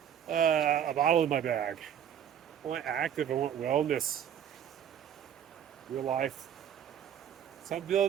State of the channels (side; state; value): left; quieter; 9.4 dB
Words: a bottle in my bag. I want active, I want wellness. Real life. So I'm